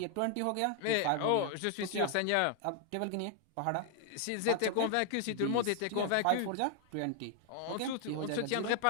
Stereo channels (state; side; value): different; both; correlation 0.00